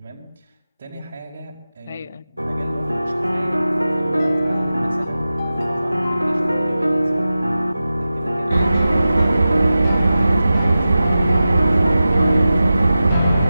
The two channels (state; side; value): inverted; both; correlation -0.94